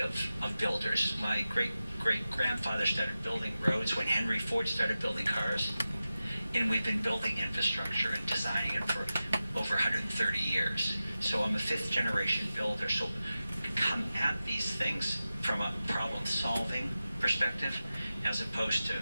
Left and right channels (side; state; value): both; inverted; correlation -0.94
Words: of builders. My great-grandfather started building roads when Henry Ford started building cars. And we've been building infrastructure and designing it for over 130 years. So I'm a 5th-generation builder. So come at these things from a problem-solving perspective, as opposed to